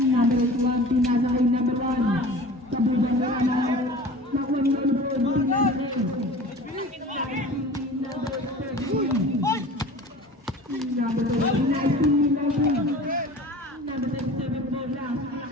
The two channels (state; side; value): normal; both; correlation 0.40